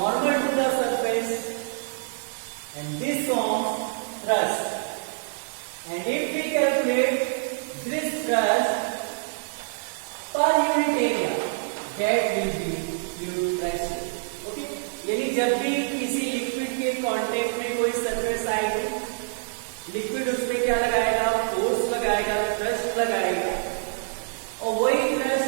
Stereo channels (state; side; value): silent; left; 61 dB below the other